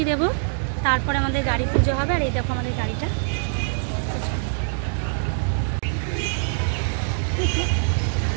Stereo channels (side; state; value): left; silent; digital silence